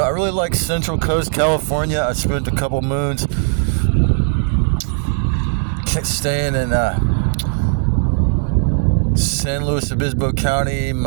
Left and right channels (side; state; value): left; silent; 65 dB below the other